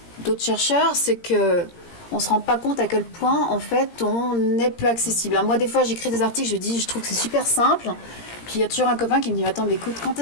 d'autres chercheurs, c'est que on se rend pas compte à quel point en fait on est peu accessible. Alors moi des fois j'écris des articles, je trouve que c'est super simple, puis il y a toujours un copain qui me dit attends mais écoute, quand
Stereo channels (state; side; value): late; right; 17 ms